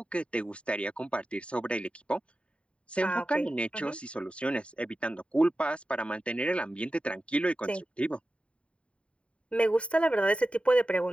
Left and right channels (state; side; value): late; right; 0.059 ms